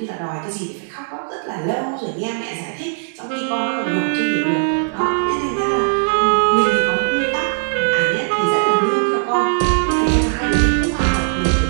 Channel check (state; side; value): silent; left; digital silence